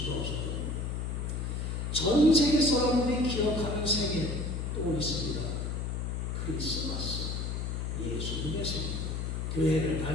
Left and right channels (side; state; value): left; noise; hum, 2 dB below the sound